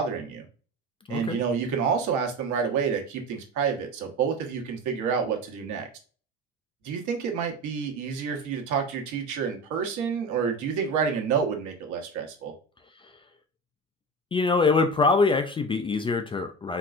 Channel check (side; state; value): both; normal; correlation 0.27